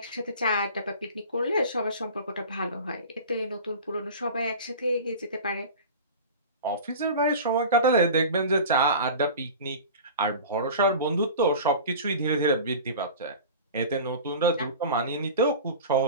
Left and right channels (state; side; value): inverted; both; correlation -0.36